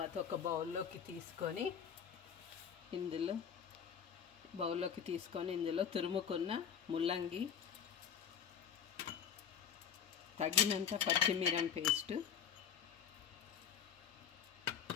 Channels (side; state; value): right; quieter; 7.9 dB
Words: ఒక బౌల్లోకి తీసుకొని ఇందులో తురుముకున్న ముల్లంగి, తగినంత పచ్చిమిరం పేస్ట్,